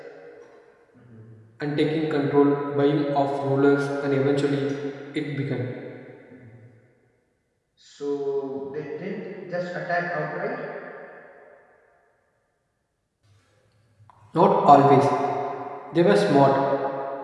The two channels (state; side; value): identical; both; correlation 1.00